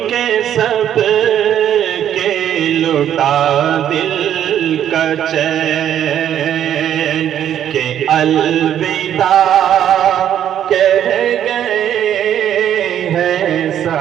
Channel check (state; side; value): quieter; left; 10.3 dB